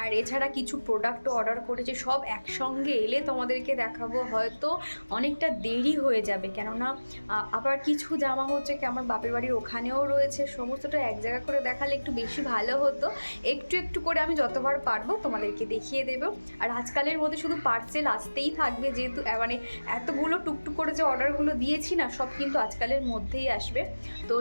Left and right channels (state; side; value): inverted; both; correlation -1.00